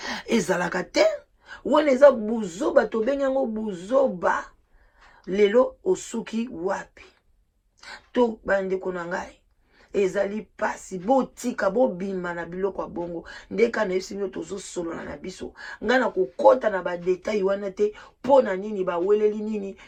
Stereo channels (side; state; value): both; identical; correlation 1.00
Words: ezalaka te wana eza buzoba tobengi yango buzoba lelo osuki wapi to bandeko na ngai ezali pasi botika bobima na biloko ya bongo ndeka na yebisi bino tozosolola na biso nga na kokota na badetail wana te mpo na nini baweleli nini